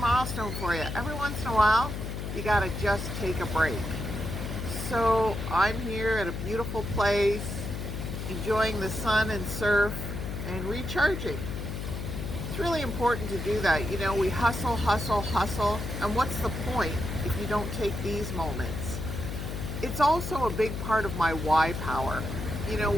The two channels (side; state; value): left; noise; hum, 5 dB below the sound